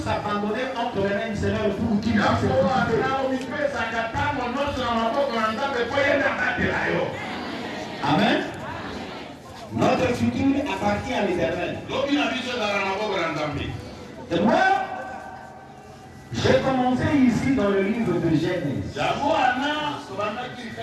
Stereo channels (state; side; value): identical; both; correlation 1.00